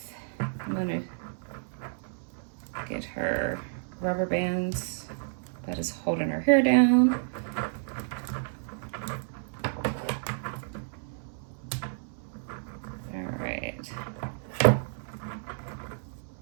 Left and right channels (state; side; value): silent; left; 57 dB below the other